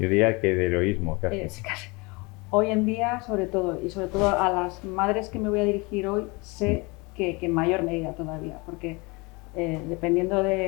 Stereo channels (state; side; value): quieter; right; 26.9 dB